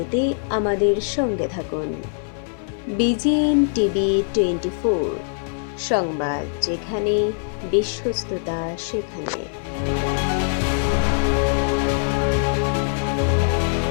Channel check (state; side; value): silent; right; 60 dB below the other